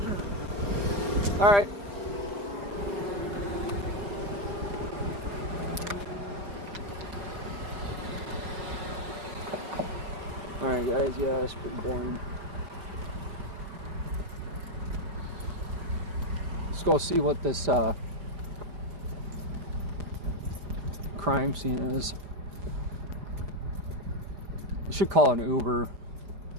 all right. All right. Alright guys, yeah, that's pretty brain. Let's go see what this crime scene is. We should call an Uber.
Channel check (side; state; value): left; late; 4.8 ms